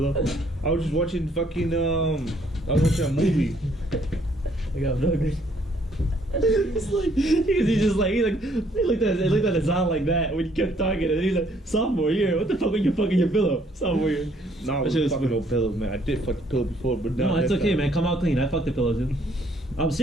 I was just watching fucking, I was watching a movie. I got nuggets. He's like, he looked at his eye like that when you kept talking, and he's like, sophomore year, what the fuck are you fucking your pillow? Sophomore year. No, I That was shit was fucking funny. no pillows, man. I did fuck the pillow before, but No, not it's that okay, time. man. Come out clean. I fucked the pillows, dude. I'm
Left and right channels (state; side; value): normal; both; correlation 0.65